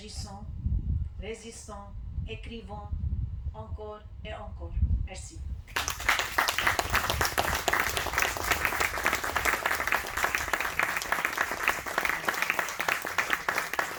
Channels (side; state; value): both; identical; correlation 1.00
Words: résistons, écrivons encore et encore. Merci.